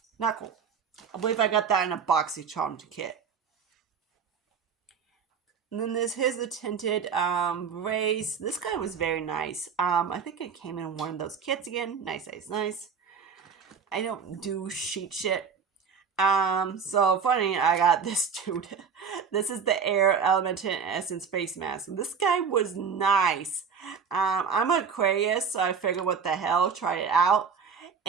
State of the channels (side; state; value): left; quieter; 6.3 dB